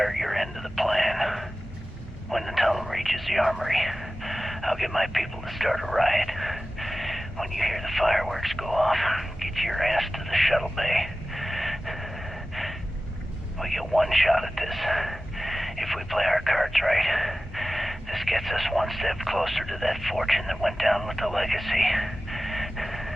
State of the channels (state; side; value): normal; both; correlation 0.96